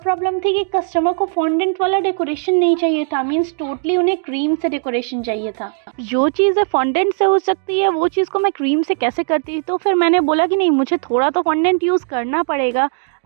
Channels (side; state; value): left; silent; digital silence